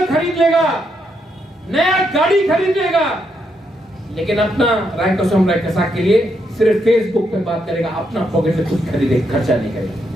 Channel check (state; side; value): normal; both; correlation 0.79